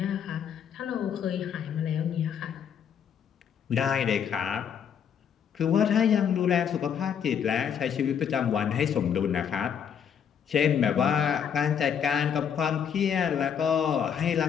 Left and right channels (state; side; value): quieter; right; 7.9 dB